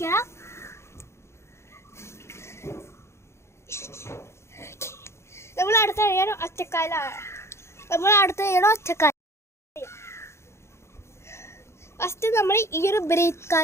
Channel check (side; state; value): right; late; 0.13 ms